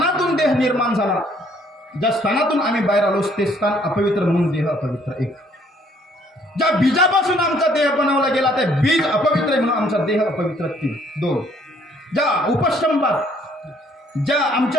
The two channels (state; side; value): normal; both; correlation 0.63